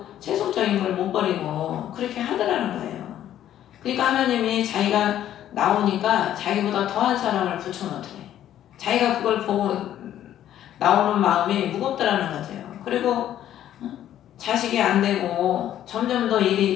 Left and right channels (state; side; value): quieter; right; 11.6 dB